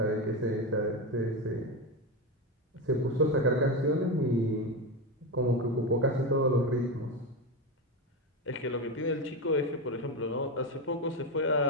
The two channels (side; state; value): both; normal; correlation 0.14